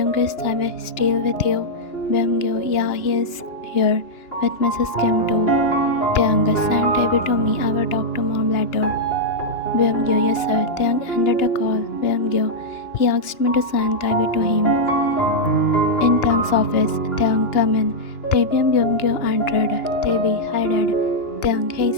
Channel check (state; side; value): late; right; 2.9 ms